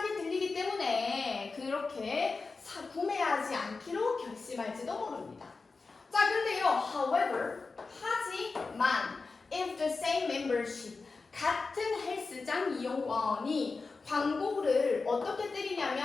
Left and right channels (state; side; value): quieter; right; 4.1 dB